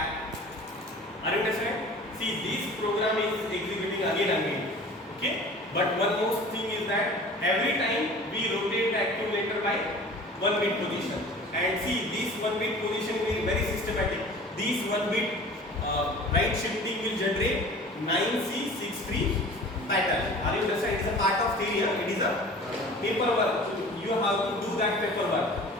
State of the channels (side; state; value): both; normal; correlation 0.43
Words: Are you understand? See, this program is executing again and again. Okay. But one more thing is that every time we rotate the accumulator by 1 bit position. And see, this 1 bit position is very systematic. This 1 bit right shifting will generate 9C63 pattern. Are you understand? It is a part of theory. It is a paperwork. You have to do that paperwork.